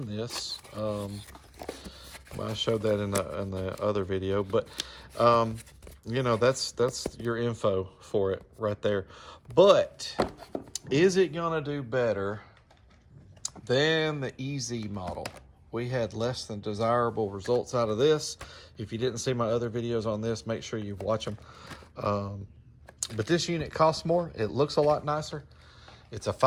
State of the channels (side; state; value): both; identical; correlation 1.00